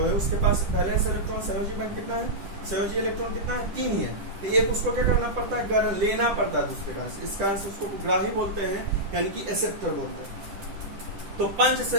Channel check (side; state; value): left; late; 10 ms